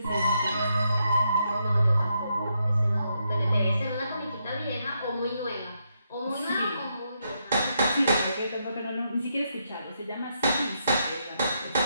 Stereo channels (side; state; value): both; inverted; correlation -0.80